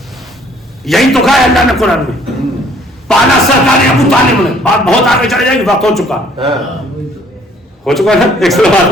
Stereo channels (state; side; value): normal; both; correlation 0.60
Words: یہی تو کہا ہے اللہ نے قرآن میں, پالا سرکار ابو طالب نے. بات بہت آگے چڑھ جائے گی, وقت ہو چکا ہے. ایک سو بات